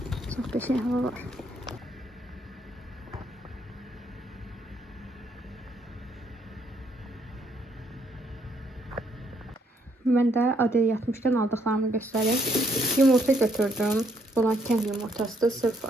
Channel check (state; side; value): normal; both; correlation 0.70